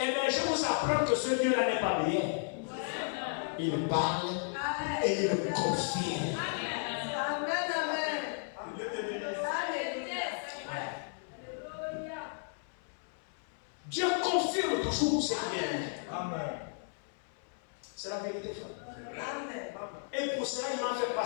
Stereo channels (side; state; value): right; silent; 55 dB below the other